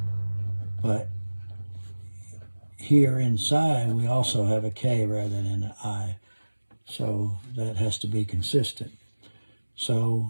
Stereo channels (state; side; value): inverted; both; correlation -1.00